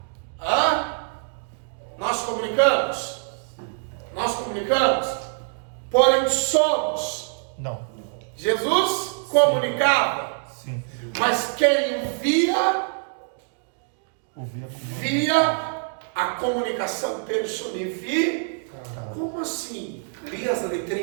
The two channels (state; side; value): silent; left; 62 dB below the other